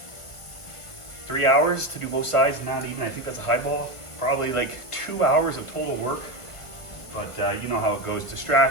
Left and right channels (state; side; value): late; right; 1.2 ms